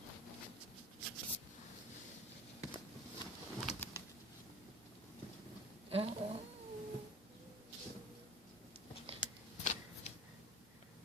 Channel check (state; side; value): normal; both; correlation 0.41